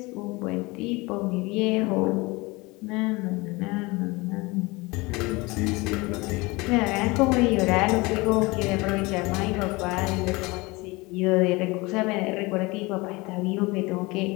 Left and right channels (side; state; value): right; quieter; 23.9 dB